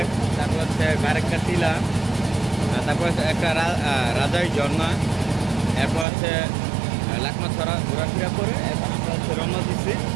তারপর হচ্ছে বারেক্কা টিলা, তারপর হচ্ছে একটা রাজাই ঝর্ণা, এরপর হচ্ছে লাকমাছড়া ঘোরাফেরা করে এখন আমরা হচ্ছে রওনা দিচ্ছি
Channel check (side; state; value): left; drops out; at 6.1 s